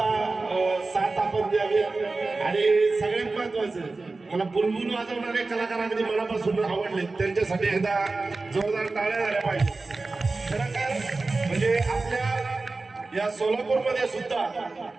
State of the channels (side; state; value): left; quieter; 3.6 dB